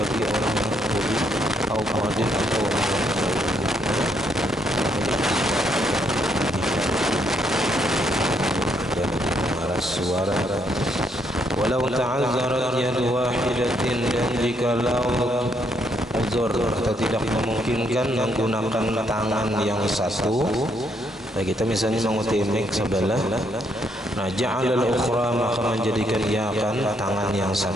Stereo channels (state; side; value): normal; both; correlation 0.73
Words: orang yang budi atau muadzin atau orang yang suara walau ta'azzarat yadu wahidatin dan jikalau uzur atau tidak memungkinkan menggunakan tangan yang satu. Nah, kita misalnya mengutip mic sebelah, nah ja'alal ukhra maka menjadikan ia akan tangan yang